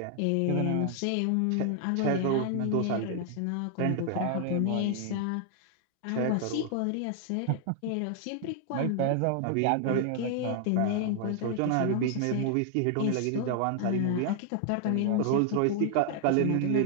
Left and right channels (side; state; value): both; different; correlation 0.00